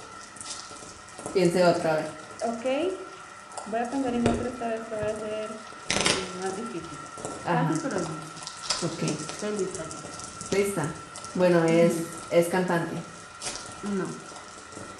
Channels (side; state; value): both; identical; correlation 1.00